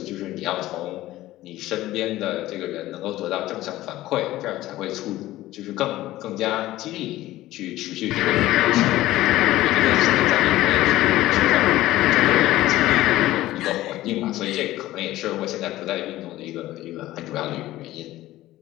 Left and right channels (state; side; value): quieter; right; 15.9 dB